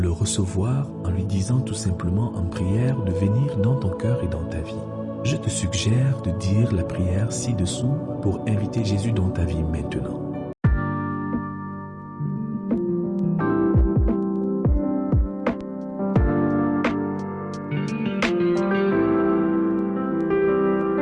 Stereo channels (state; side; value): identical; both; correlation 1.00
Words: recevoir en lui disant tout simplement en prière de venir dans ton cœur et dans ta vie. Je te suggère de dire la prière ci-dessous pour inviter Jésus dans ta vie maintenant.